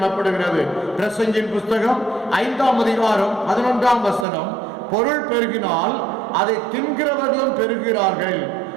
பிரசங்கின் புஸ்தகம் 5ஆம் அதிகாரம் 11ஆம் வசனம், பொருள் பெருகினால் அதை தின்கிறவர்களும் பெருகிறார்கள்,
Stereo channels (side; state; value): left; drops out; at 4.2 s